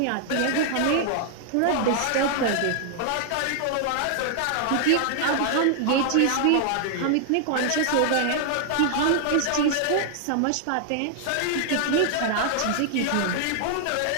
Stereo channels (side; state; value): both; different; correlation 0.00